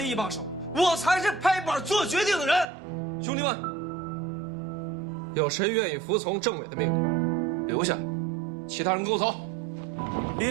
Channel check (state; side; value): drops out; left; at 2.7 s